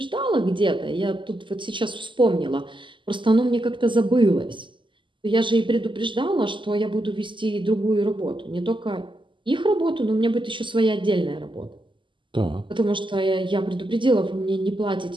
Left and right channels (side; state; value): left; late; 0.24 ms